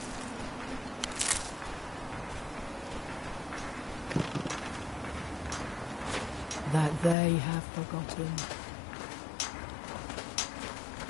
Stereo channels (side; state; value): right; drops out; at 7.2 s